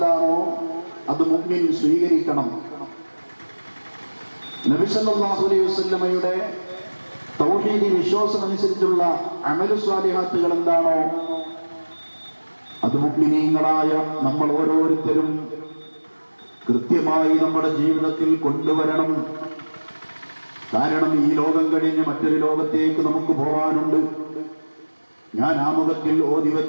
അത് മുഅ്മിൻ സ്വീകരിക്കണം. നബി സല്ലല്ലാഹു അലൈഹി വസല്ലമയുടെ തൗഹീദി വിശ്വാസം അനുസരിച്ചുള്ള അമലു സ്വാലിഹാത്തുകൾ എന്താണോ അത് മുഅ്മിനീങ്ങളായ നമ്മൾ ഓരോരുത്തരും കൃത്യമായി നമ്മുടെ ജീവിതത്തിൽ കൊണ്ടുവരണം. കാരണം ഈ ലോകം കഴിഞ്ഞ് മറ്റൊരു ലോകത്തേക്ക് നമുക്ക് പോകാനുണ്ട്. ഞാൻ ആമുഖത്തിൽ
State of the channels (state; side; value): inverted; both; correlation -1.00